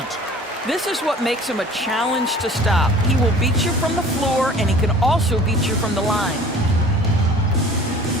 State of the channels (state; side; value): normal; both; correlation 0.47